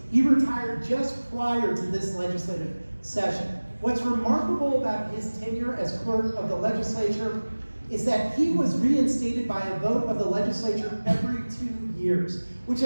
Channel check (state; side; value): inverted; both; correlation -1.00